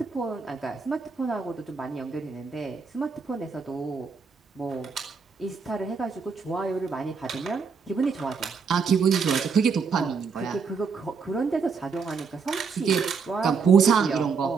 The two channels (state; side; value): quieter; left; 5.4 dB